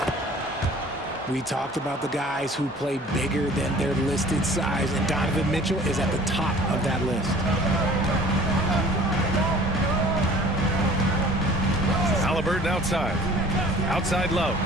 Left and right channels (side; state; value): both; normal; correlation 0.49